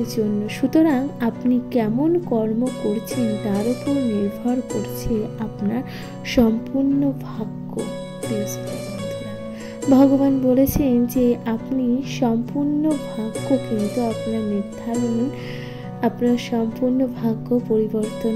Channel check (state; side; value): identical; both; correlation 1.00